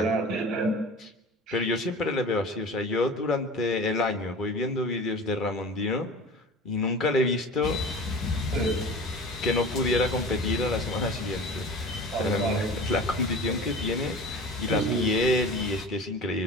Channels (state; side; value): normal; both; correlation 0.37